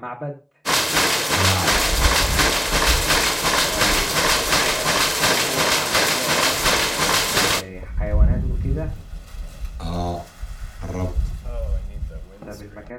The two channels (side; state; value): both; identical; correlation 1.00